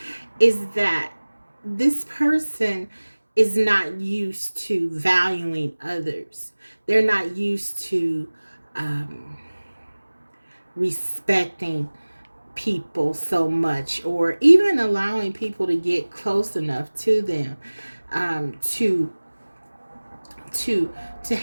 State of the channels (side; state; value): both; inverted; correlation -1.00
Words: is that this person is not used to valuing others. They're not used to respecting people so much, or even allowing people to get close enough to them to